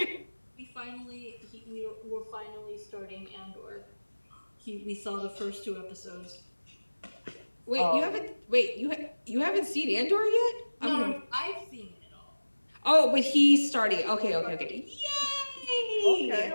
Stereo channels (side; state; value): both; inverted; correlation -1.00